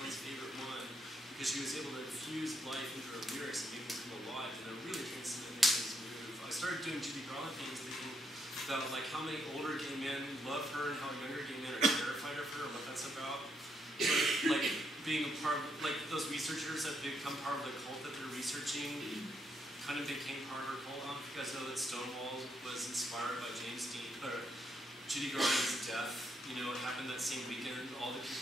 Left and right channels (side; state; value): both; normal; correlation 0.76